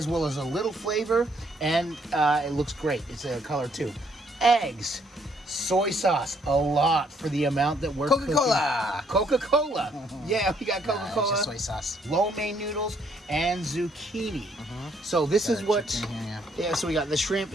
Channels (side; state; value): both; normal; correlation 0.68